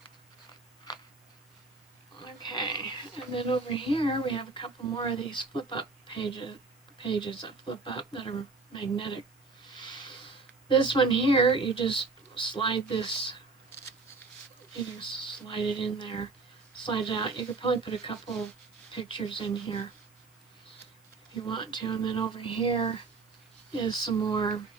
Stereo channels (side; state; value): left; quieter; 4.1 dB